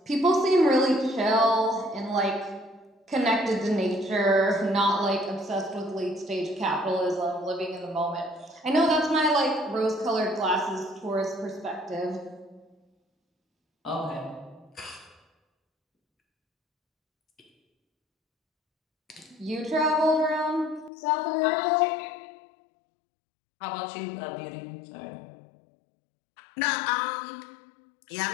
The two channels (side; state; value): right; drops out; at 20.9 s